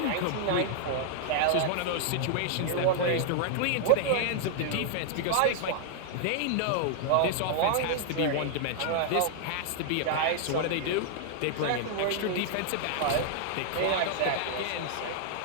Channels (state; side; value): different; both; correlation -0.01